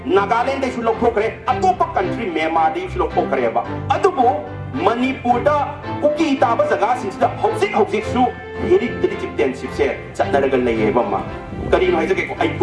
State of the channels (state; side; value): identical; both; correlation 1.00